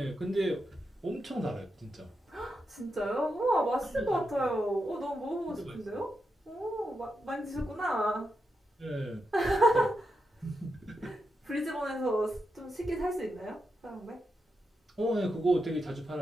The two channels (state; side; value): normal; both; correlation 0.86